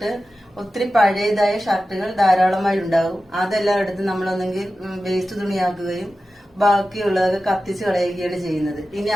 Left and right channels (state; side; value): normal; both; correlation 0.94